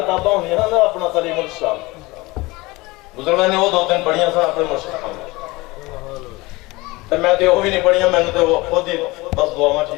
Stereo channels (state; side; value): quieter; right; 22.3 dB